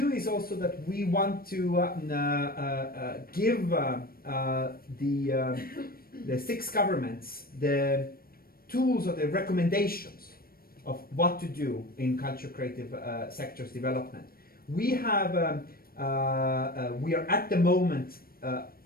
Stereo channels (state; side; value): late; right; 0.43 ms